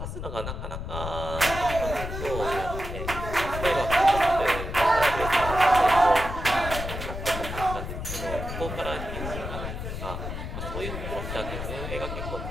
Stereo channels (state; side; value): noise; left; rumble, 6 dB below the sound